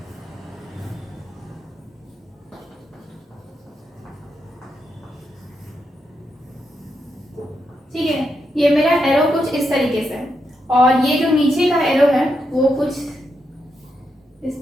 ठीक है, ये मेरा एरो कुछ इस तरीके से है और ये जो नीचे का एरो है वो कुछ इस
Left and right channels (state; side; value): normal; both; correlation 0.83